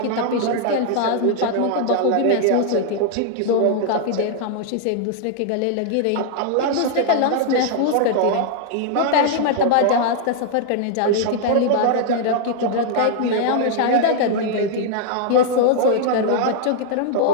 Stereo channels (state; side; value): different; both; correlation -0.01